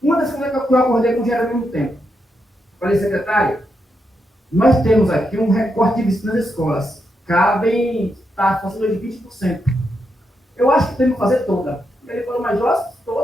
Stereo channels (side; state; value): both; normal; correlation 0.83